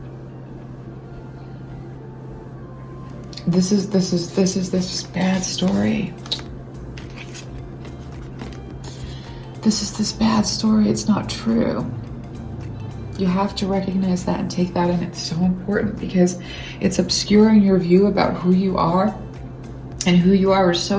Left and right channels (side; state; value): both; identical; correlation 1.00